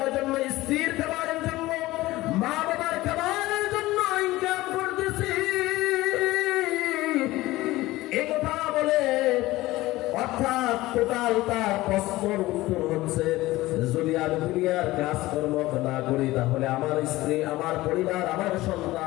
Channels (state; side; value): quieter; right; 18.1 dB